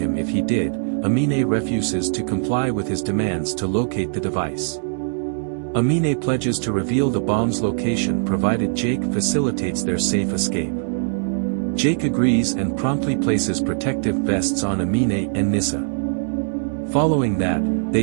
if he did, Amine refuses to comply with his demands to locate the device. Amine pledges to reveal the bomb's location provided Jake facilitates their safe escape. Jake agrees and promptly places protective vests on Amine and Nissa. Following that,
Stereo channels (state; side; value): silent; left; digital silence